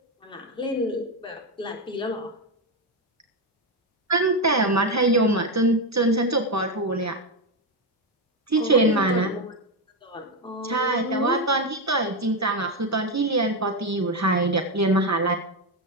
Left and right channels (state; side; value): normal; both; correlation 0.09